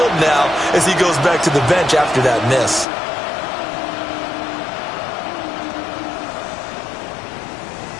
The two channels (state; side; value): drops out; right; at 2.9 s